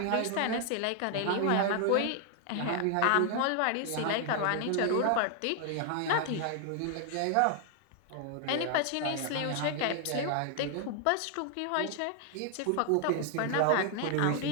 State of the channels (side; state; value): both; different; correlation 0.00